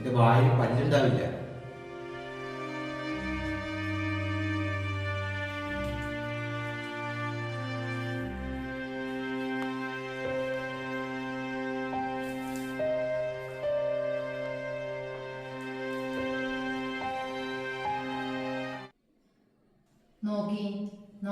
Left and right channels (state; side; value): identical; both; correlation 1.00